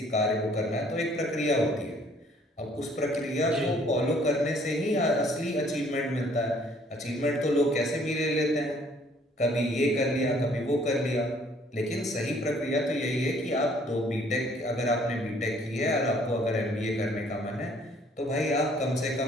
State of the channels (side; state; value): both; normal; correlation 0.60